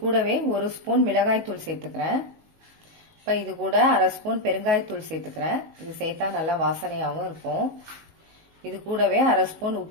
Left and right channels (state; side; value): late; left; 19 ms